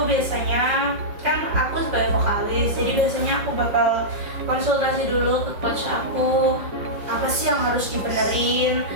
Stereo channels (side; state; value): left; late; 5.4 ms